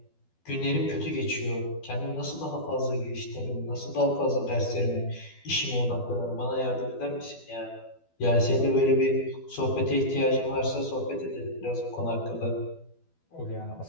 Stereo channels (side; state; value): right; late; 12 ms